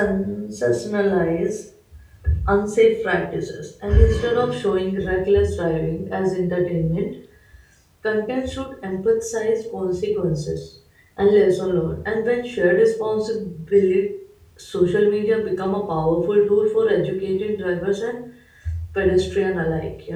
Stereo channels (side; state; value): both; identical; correlation 1.00